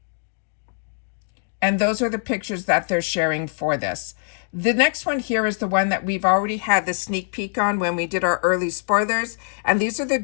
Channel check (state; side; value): silent; right; digital silence